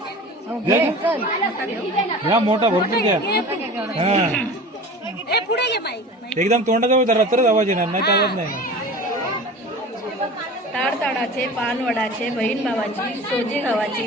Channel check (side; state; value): both; normal; correlation 0.37